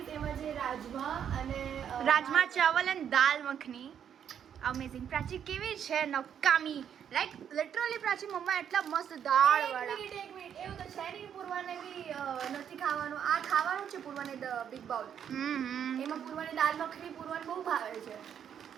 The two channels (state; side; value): quieter; left; 8.7 dB